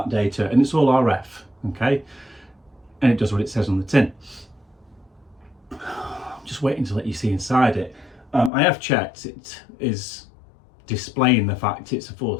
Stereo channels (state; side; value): drops out; right; at 8.5 s